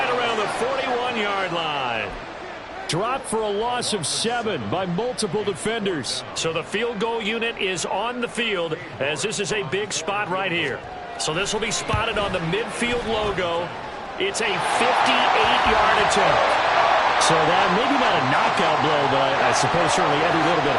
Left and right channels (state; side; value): identical; both; correlation 1.00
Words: around the 41-yard line. Dropped for a loss of 7 by multiple defenders. So the field goal unit is on the field as this is a big spot right here. So this will be spotted on the midfield logo. It's a 58-yard attempt. So that maybe not a knockout blow, but I suppose certainly every little bit